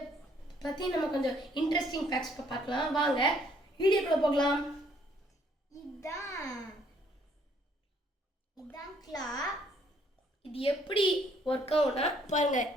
பற்றி நம்ம கொஞ்சம் இன்ட்ரெஸ்டிங் ஃபேக்ட்ஸ் பார்க்கலாம். வாங்க வீடியோக்குள்ளே போகலாம். இதான் கிளா. இது எப்படி ஒர்க் ஆகும்னா பாருங்க,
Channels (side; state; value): both; normal; correlation 0.65